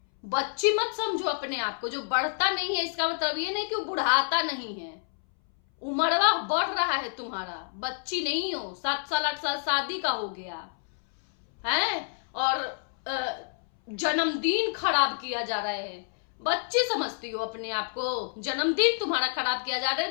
बच्ची मत समझो अपने आप को। जो बढ़ता नहीं है इसका मतलब ये नहीं कि वो बुढ़ाता नहीं है, उम्रवा बढ़ रहा है तुम्हारा, बच्ची नहीं हो। 7 साल 8 साल शादी का हो गया है और जन्मदिन खराब किया जा रहा है। बच्ची समझती हो अपने आप को? जन्मदिन तुम्हारा खराब किया जा रहा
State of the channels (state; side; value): silent; right; 59 dB below the other